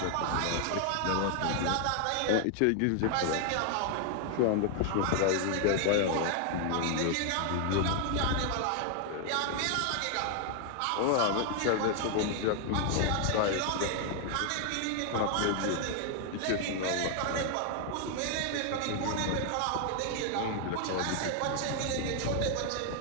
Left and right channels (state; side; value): different; both; correlation 0.00